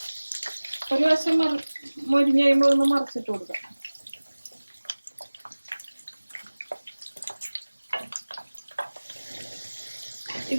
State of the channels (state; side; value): inverted; both; correlation -1.00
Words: ഒരു വശം മൊരിഞ്ഞ് കഴിയുമ്പോൾ ഒന്ന് മറിച്ചിട്ട് കൊടുക്കാം.